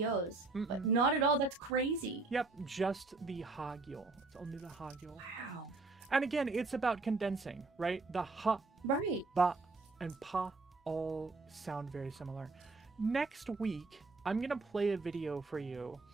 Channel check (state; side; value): quieter; left; 3.6 dB